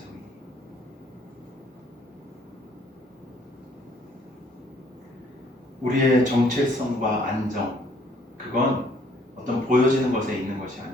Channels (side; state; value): both; normal; correlation 0.62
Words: 우리의 정체성과 안정, 그건 어떤 보여지는 것에 있는 것이